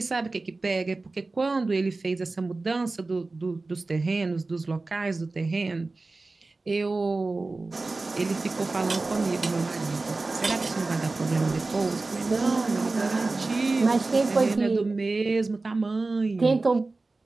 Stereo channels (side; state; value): left; quieter; 3.4 dB